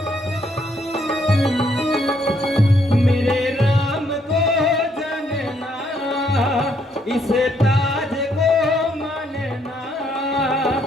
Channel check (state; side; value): normal; both; correlation 0.71